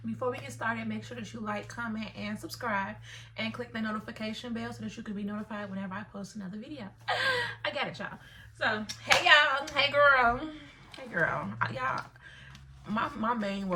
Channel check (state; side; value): identical; both; correlation 1.00